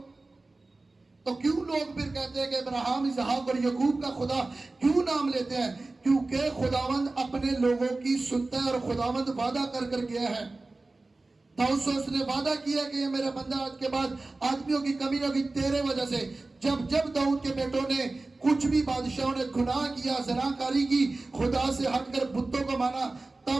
تو کیوں لوگ پھر کہتے ہیں کہ ابراہیم، اسحاق اور یعقوب کا خدا کیوں نام لیتے ہیں؟ کیونکہ خداوند اپنے لوگوں کی سنتا ہے، اور خداوند وعدہ کر کر گیا ہے. داؤد سے اس نے وعدہ کیا کہ یہ میرا بندہ آج کے بعد آدمیوں کی کمی نہ ہوگی تیرے وجہ سے. جب داؤد کے بیٹوں نے کچھ بھی بادشاہوں نے گناہ کیا، زناکاری کی، خدا سے ہٹ کر بتوں کو مانا،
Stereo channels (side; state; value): left; quieter; 3.2 dB